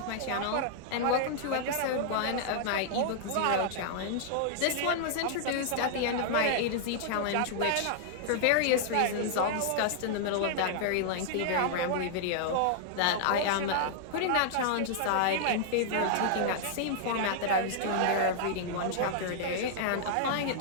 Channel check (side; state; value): both; different; correlation -0.01